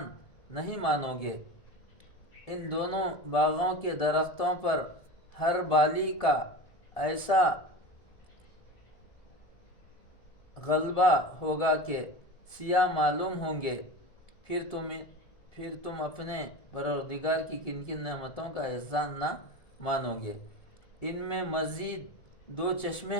نہیں مانو گے؟ ان دونوں باغوں کے درختوں پر ہر بالی کا ایسا غلبہ ہوگا کہ سیاہ معلوم ہوں گے۔ پھر تم اپنے پروردگار کی کن کن نعمتوں کا احسان نہ مانو گے؟ ان میں مزید دو چشمے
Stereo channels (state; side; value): late; right; 1.7 ms